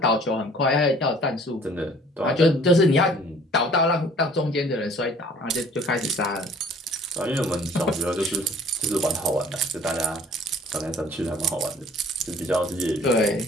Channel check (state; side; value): normal; both; correlation 0.53